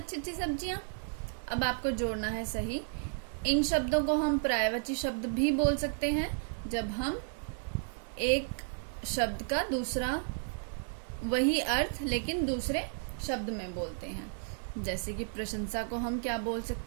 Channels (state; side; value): silent; left; digital silence